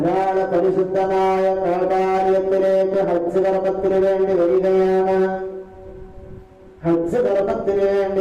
പരിശുദ്ധമായ കഅബാലയത്തിലേക്ക് ഹജ്ജ് കർമ്മത്തിന് വേണ്ടി വരികയാണ്. ഹജ്ജ് കർമ്മത്തിന് വേണ്ടി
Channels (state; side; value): identical; both; correlation 1.00